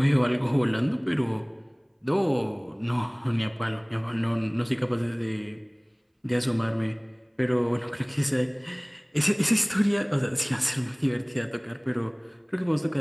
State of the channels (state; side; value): identical; both; correlation 1.00